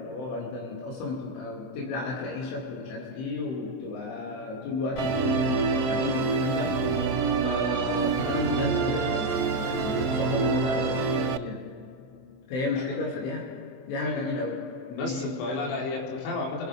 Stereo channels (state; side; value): late; right; 23 ms